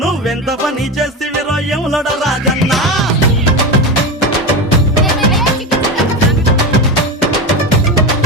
పని చేసి విరోయములోడ రాజన్న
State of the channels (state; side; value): normal; both; correlation 0.20